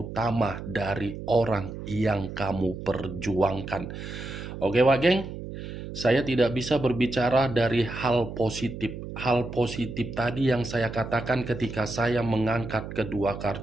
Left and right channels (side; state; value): right; noise; hum, 9 dB below the sound